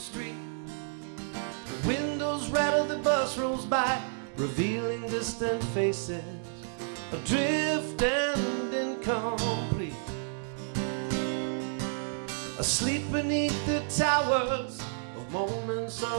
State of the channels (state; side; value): silent; left; digital silence